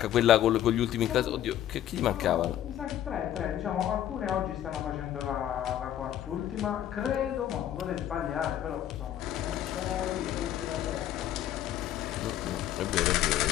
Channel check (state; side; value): quieter; right; 11.7 dB